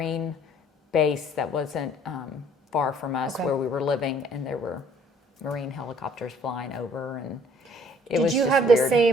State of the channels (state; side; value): normal; both; correlation 0.58